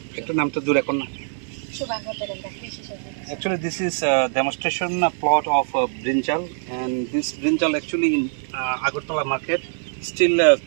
Actually, this is a demonstration plot of brinjal, and this brinjal actually in Agartala market. Still,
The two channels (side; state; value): left; silent; digital silence